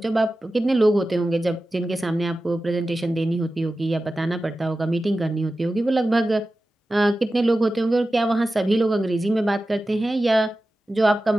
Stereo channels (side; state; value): both; normal; correlation 0.94